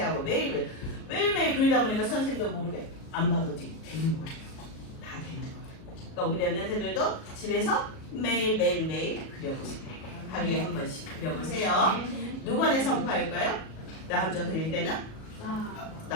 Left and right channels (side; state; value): right; late; 37 ms